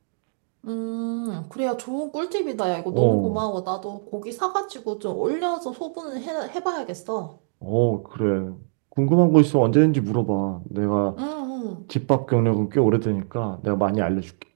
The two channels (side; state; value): left; silent; digital silence